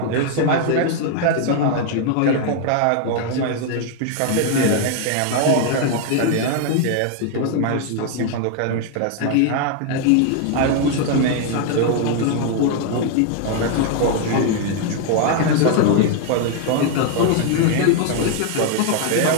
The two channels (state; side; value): different; both; correlation 0.00